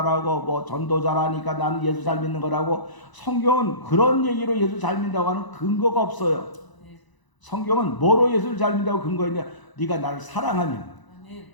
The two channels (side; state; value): right; late; 1.0 ms